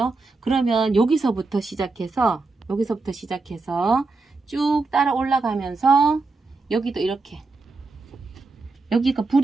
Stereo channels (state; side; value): quieter; left; 3.7 dB